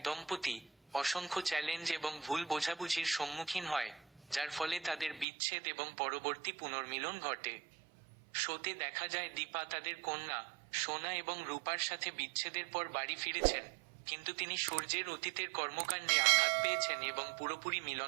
দম্পতি, অসংখ্য চ্যালেঞ্জ এবং ভুল বোঝাবুঝির সম্মুখীন হয়, যার ফলে তাদের বিচ্ছেদ এবং পরবর্তী পুনর্মিলন ঘটে। শোতে দেখা যায় দীপা তাদের কন্যা সোনা এবং রূপার সাথে বিচ্ছেদের পর বাড়ি ফিরেছেন, কিন্তু তিনি সূর্যের অতীতের কর্মকাণ্ডে আঘাত পেয়েছেন এবং পুরোপুরি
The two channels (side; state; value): left; drops out; at 5.2 s